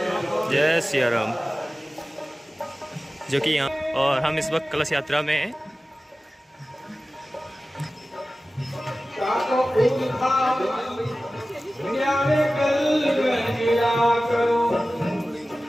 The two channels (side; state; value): both; normal; correlation 0.96